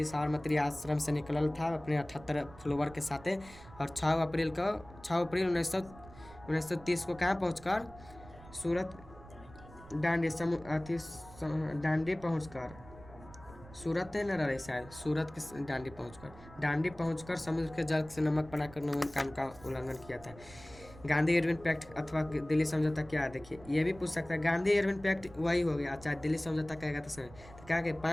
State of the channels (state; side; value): noise; right; rumble, 19 dB below the sound